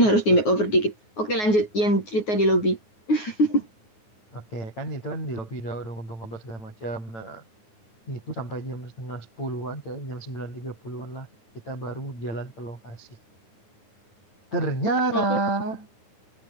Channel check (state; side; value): late; right; 9.5 ms